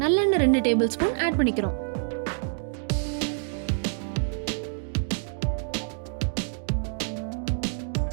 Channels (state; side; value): silent; left; 60 dB below the other